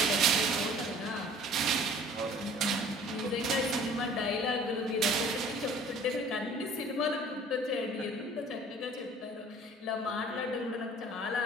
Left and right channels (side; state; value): both; normal; correlation 0.49